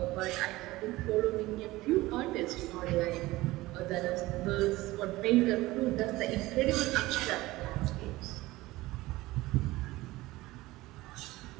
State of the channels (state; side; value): quieter; left; 18.8 dB